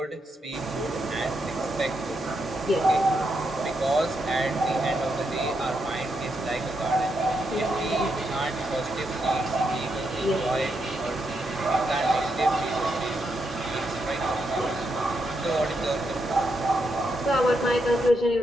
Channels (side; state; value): both; normal; correlation 0.81